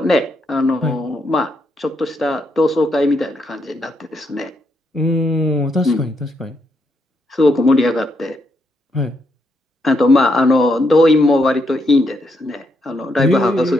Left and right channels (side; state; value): both; normal; correlation 0.78